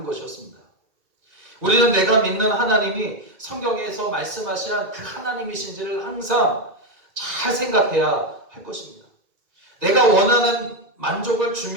것이었습니다. 우리는 내가 믿는 하나님이 성경에서 말씀하신 그 하나님이신지를 항상 잘 생각해야 할 것입니다. 내가 원하는 만족을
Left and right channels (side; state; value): left; late; 2.2 ms